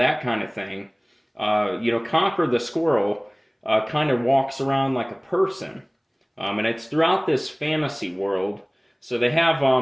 kind of thing. Conker the Squirrel kind of walks around like a person. And it's throughout this fantasy world. So they have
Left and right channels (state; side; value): identical; both; correlation 1.00